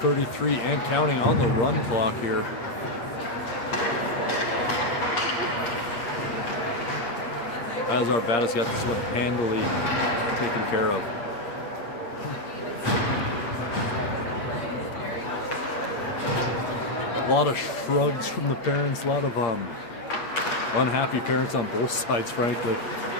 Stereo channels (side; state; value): right; late; 8.5 ms